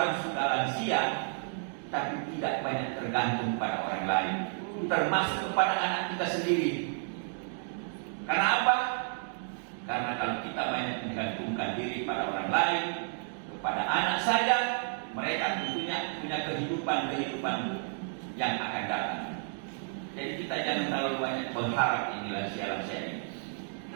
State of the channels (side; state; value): left; silent; 57 dB below the other